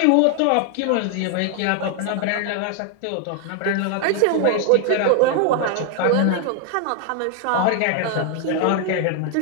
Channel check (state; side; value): different; both; correlation 0.00